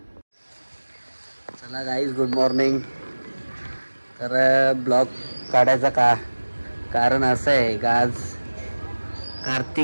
चला गाईज, गुड मॉर्निंग. तर ब्लॉग काढायचा कारण असं आहे का आज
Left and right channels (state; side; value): inverted; both; correlation -1.00